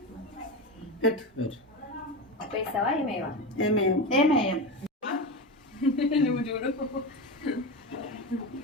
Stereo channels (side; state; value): both; normal; correlation 0.20